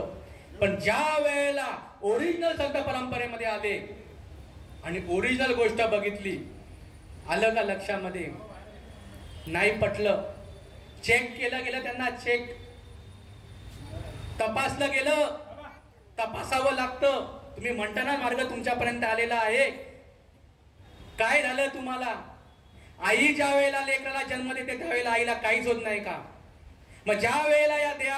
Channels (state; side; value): identical; both; correlation 1.00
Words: पण ज्या वेळेला ओरिजिनल संत परंपरेमध्ये आले आणि ओरिजिनल गोष्ट बघितली, आलं का लक्षामध्ये? नाही पटलं. चेक केलं गेलं त्यांना. चेक तपासलं गेलं. तपासावं लागतं. तुम्ही म्हणता ना मार्ग तुमच्यापर्यंत आलेला आहे. काय झालं तुम्हाला? आई ज्या वेळेला लेकराला जन्म देते त्यावेळेला आईला काहीच होत नाही का? मग ज्या वेळेला या